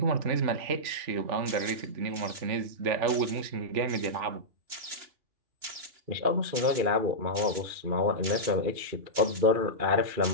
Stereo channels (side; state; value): left; late; 2.9 ms